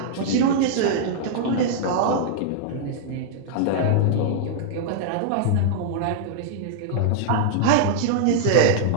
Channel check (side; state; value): both; different; correlation -0.01